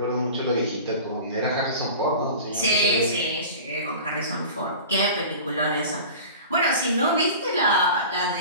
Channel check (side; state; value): both; inverted; correlation -0.37